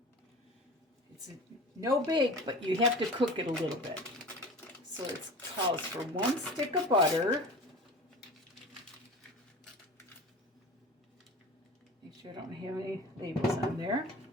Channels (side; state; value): both; normal; correlation 0.36